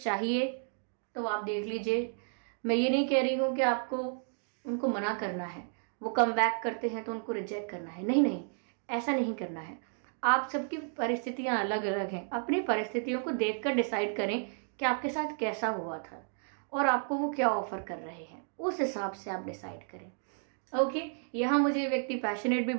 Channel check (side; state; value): left; silent; 56 dB below the other